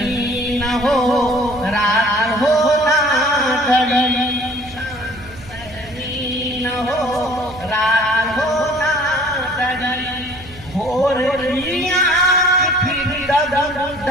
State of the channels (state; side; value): noise; right; hum, 19 dB below the sound